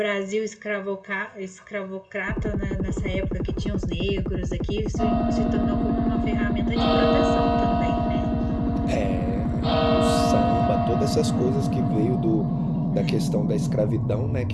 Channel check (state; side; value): identical; both; correlation 1.00